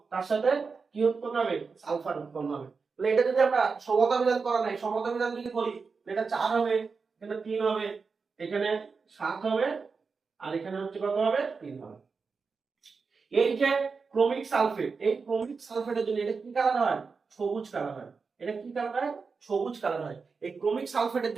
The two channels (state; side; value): quieter; left; 4.9 dB